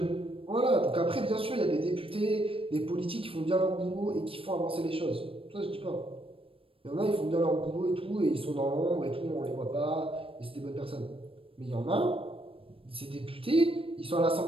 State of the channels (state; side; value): late; left; 0.27 ms